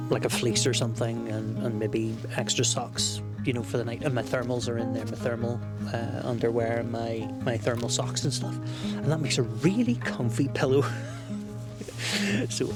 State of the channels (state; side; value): identical; both; correlation 1.00